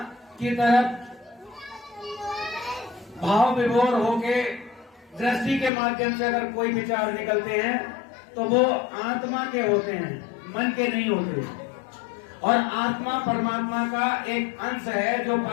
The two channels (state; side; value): drops out; right; at 5.7 s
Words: की तरफ भाव विभोर होके दृष्टि के माध्यम से अगर कोई विचार निकलते हैं तो वो आत्मा के होते हैं, मन के नहीं होते। और आत्मा परमात्मा का एक अंश है जो